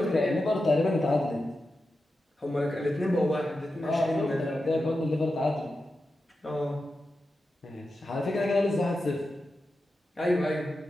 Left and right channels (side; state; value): both; normal; correlation 0.90